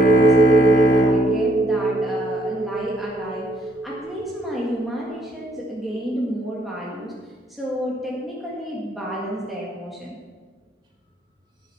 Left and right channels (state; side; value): normal; both; correlation 0.68